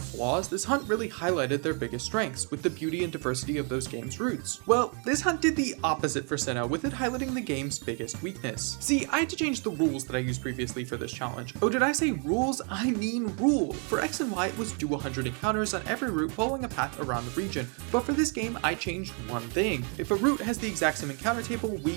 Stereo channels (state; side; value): quieter; left; 39.0 dB